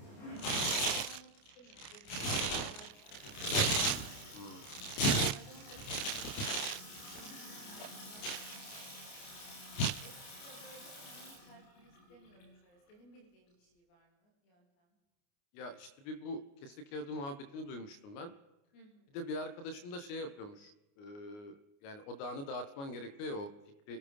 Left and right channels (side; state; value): right; late; 29 ms